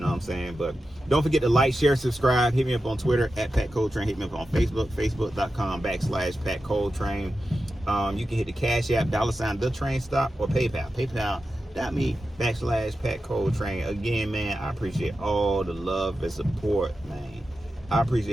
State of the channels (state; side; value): normal; both; correlation 0.91